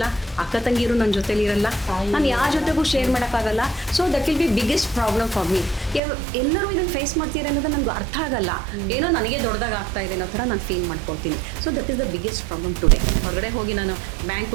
ಅಕ್ಕ ತಂಗಿರು ನನ್ನ ಜೊತೆಲಿ ಇರಲ್ಲ, ನಾನು ಯಾರ ಜೊತೆಗೂ ಶೇರ್ ಮಾಡೋಕ್ಕಾಗಲ್ಲ. So that will be biggest problem for me. ಎಲ್ಲರೂ ಇದನ್ನು ಫೇಸ್ ಮಾಡ್ತೀರ ಅನ್ನೋದು ನನಗೆ ಅರ್ಥ ಆಗಲ್ಲ. ಏನೋ ನನಗೆ ದೊಡ್ಡದಾಗ ಆಗ್ತಾ ಇದೆ ಅನ್ನೋ ಥರ ನಾನು ಫೀಲ್ ಮಾಡ್ಕೊಳ್ತೀನಿ. So that is the biggest problem today. ಹೊರಗಡೆ ಹೋಗಿ ನಾನು ಬ್ಯಾಂಕ್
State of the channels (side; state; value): left; drops out; at 6.0 s